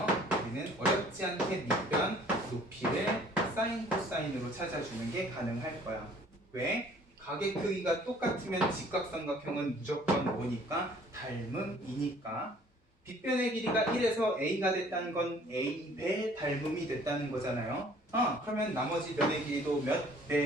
우리는 어렵지 않게 밑변 높이를 사인 코사인으로 찾아주는 게 가능할 거야. 왜? 각의 크기가 똑같으면 직각삼각형은 무조건 뭐니까? 닮음이니까. 빗변의 길이가 1에서 a가 됐다는 건 a배 닮음이 됐다는 거잖아요. 그러면 나머지 변의 길이도 몇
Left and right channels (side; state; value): both; normal; correlation 0.55